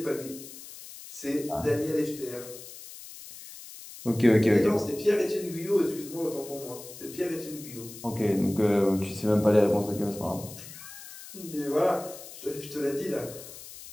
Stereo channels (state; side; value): noise; left; hiss, 15 dB below the sound